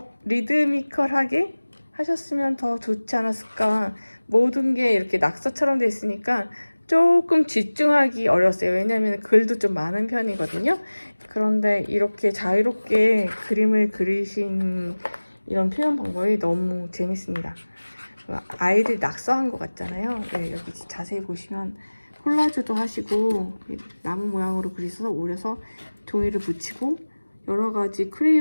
리드미컬하게 하셨으면 더 좋지 않았을까. 모든 게 이렇게 낙서처럼 돼 있으니까 조금 집중하기 어려웠어요. 왜냐하면 글도 좀 많은 편이거든요. 그런데 이렇게 자유롭게 그림을 그리신 이런 표현 방법이 너무 재밌습니다. 아이들이 낙서한 것 같잖아요. 네, 여기 자세히 보시면 콜라주도 하시고 나무 모양으로 그리셔서 오려서 종이를 붙이고 여러 가지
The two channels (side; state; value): both; inverted; correlation -1.00